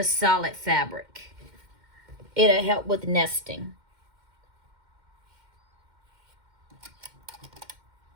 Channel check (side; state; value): left; late; 2.1 ms